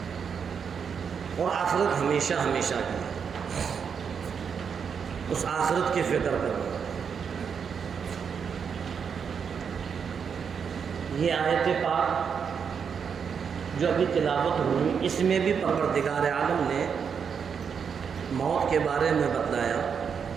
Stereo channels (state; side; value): quieter; left; 6.7 dB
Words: اور آخرت ہمیشہ ہمیشہ کی ہے. اس آخرت کی فکر کرو. یہ آیت پاک جو ابھی تلاوت ہوئی، اس میں بھی پروردگار عالم نے موت کے بارے میں بتلایا